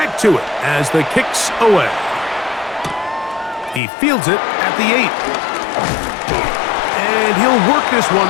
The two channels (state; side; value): drops out; right; at 3.8 s